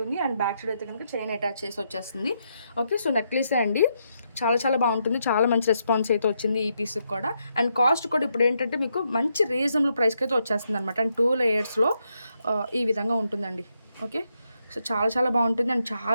అండ్ బ్యాక్ సైడ్ అయితే కనుక చైన్ అటాచ్ చేసి వచ్చేస్తుంది. ఓకే, సో నెక్లెస్ అండి. చాలా బాగుంటుంది. చాలా మంచి రెస్పాన్స్ అయితే వచ్చింది ఈ పీస్కి కూడా. అండ్ కాస్ట్ కూడా ఇప్పుడు ఏంటంటే మీకు మంచి రీజనబుల్ ప్రైస్కి అయితే వచ్చేస్తుంది అనమాట. అండ్ 2 లేయర్స్లో ఈ విధంగా ఉంటుందండి. ఓకే, సో చాలా బాగుంటుంది. అండ్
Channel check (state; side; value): inverted; both; correlation -0.80